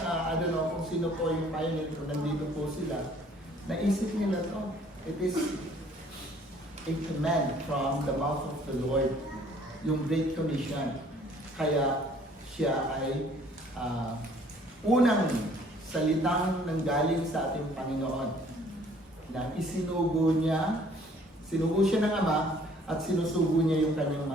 don't know kung sino po yung pioneer, kung nandito po sila, naisip nila to. It is a command from the mouth of the Lord, yung Great Commission. Kaya siya ay unang salitang nanggaling sa ating Panginoon na isinugo siya ng Ama at sinusugo niya yung kanyang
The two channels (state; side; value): normal; both; correlation 0.58